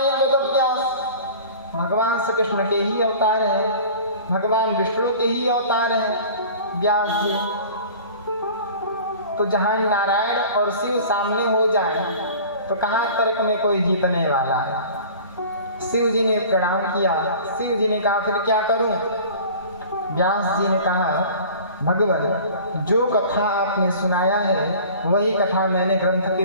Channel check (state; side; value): inverted; both; correlation -0.43